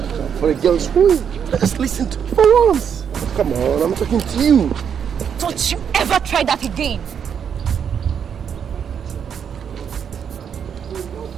for a girl's win. Just listen to me for once. Come on, I'm talking to you. Don't you ever try that again.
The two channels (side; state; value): left; quieter; 7.7 dB